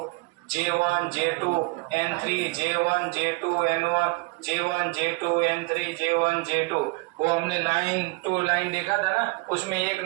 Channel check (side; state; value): left; quieter; 26.1 dB